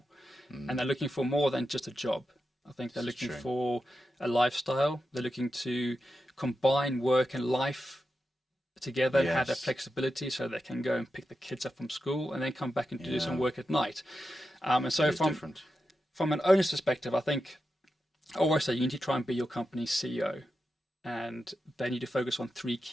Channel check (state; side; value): normal; both; correlation 0.89